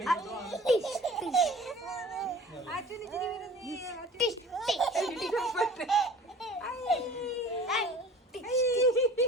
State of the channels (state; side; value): normal; both; correlation 0.44